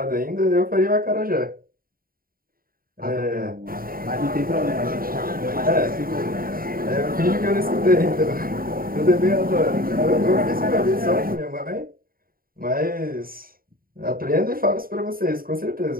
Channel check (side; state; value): left; late; 0.42 ms